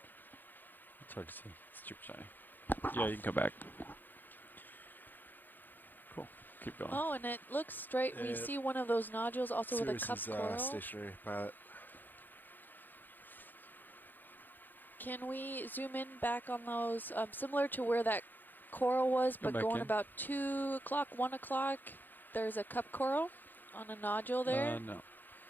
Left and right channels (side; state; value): right; late; 0.089 ms